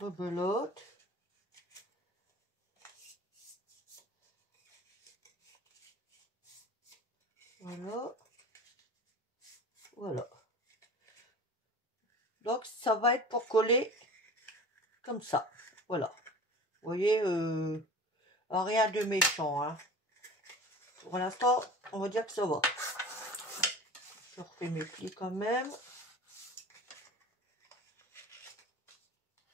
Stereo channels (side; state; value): both; normal; correlation 0.39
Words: Voilà. Voilà. Donc ça va être pour coller comme ça. Voilà. Vous voyez, rien de méchant. Hein. Pour l'instant, on va dire que ça va. Je refais mes plis quand même.